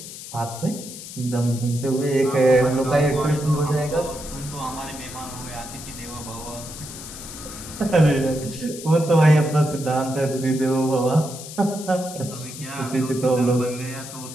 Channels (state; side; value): noise; left; hiss, 12 dB below the sound